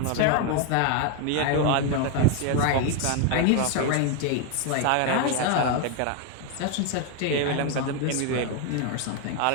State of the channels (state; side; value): different; both; correlation 0.01